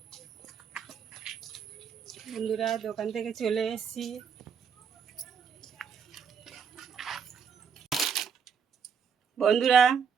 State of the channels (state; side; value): quieter; left; 6.8 dB